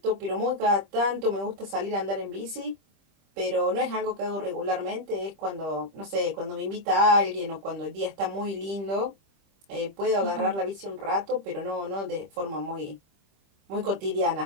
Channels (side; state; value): left; late; 25 ms